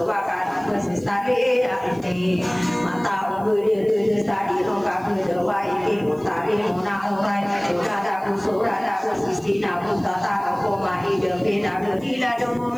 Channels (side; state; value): right; noise; hiss, 27 dB below the sound